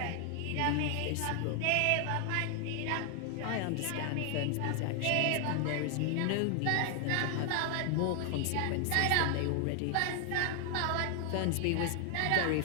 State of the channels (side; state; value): both; different; correlation 0.00